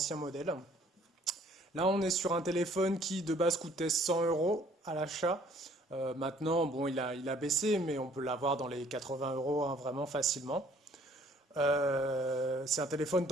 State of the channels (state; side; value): normal; both; correlation 0.58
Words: modèles. Là, on est sur un téléphone qui de base coûtait 100 euros à l'achat. Maintenant, bon, il a baissé, mais on peut l'avoir dans les 80 euros hein, vraiment facilement. C'est un téléphone